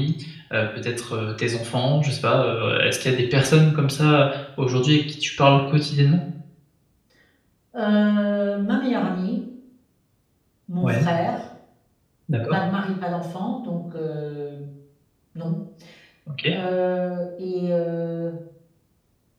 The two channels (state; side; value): identical; both; correlation 1.00